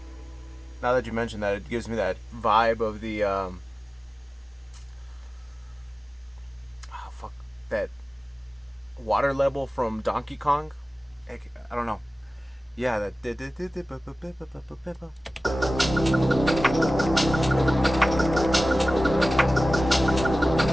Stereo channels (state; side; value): normal; both; correlation 0.96